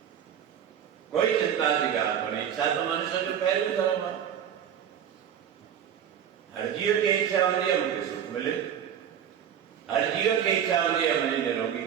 कोई चिंता की ॻाल्हि कोन्हे। इच्छा तो मनुष्य जो पहिरियों धर्म आहे। हर जीव खे इच्छा हूंदी आहे मूंखे सुख मिले, हर जीव खे इच्छा हूंदी आहे मुंहिंजी निरोगी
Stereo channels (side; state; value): left; quieter; 9.1 dB